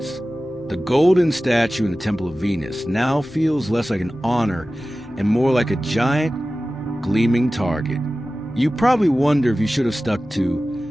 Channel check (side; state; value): both; normal; correlation 0.96